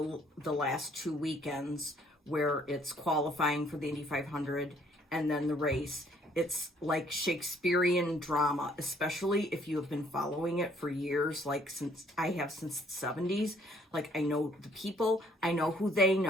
last 2 weekends where it's qualifying for the Indy 500 and then the race. It's like Shakespearean drama, especially if you have been following it for years, like since the 70s. Like, I know the people, I know who they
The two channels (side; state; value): both; normal; correlation 0.63